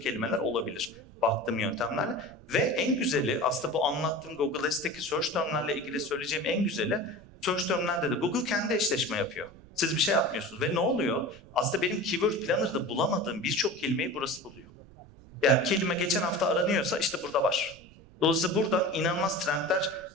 olabilir baktığım yöntemlerle. Ve en güzeli aslında bu anlattığım Google Ads'teki search termlerle ilgili söyleyeceğim en güzeli search termlerde de Google kendi eşleşme yapıyor. Siz bir şey yapmıyorsunuz. Ve ne oluyor? Aslında benim Keyword Planner'da bulamadığım birçok kelimeyi burası buluyor. Yani kelime geçen hafta aranıyorsa işte burada var. Dolayısıyla buradan inanılmaz trendler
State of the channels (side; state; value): right; noise; rumble, 24 dB below the sound